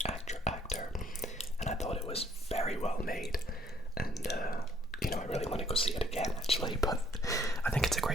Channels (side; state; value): both; normal; correlation 0.64